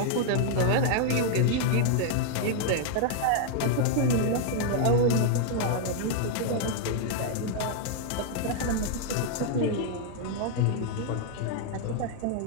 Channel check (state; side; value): different; both; correlation 0.00